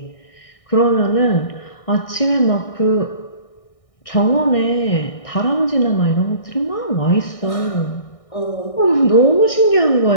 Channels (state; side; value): late; right; 1.6 ms